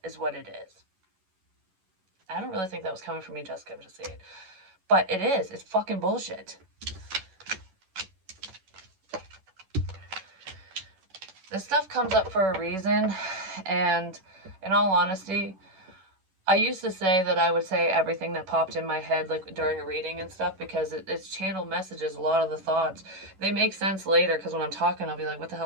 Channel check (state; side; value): late; left; 11 ms